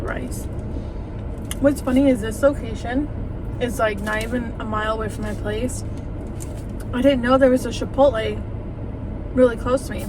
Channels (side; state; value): both; identical; correlation 1.00